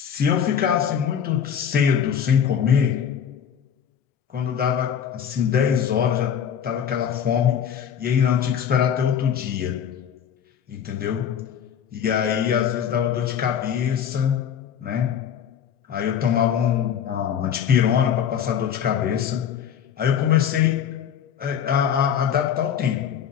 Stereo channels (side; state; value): right; quieter; 8.5 dB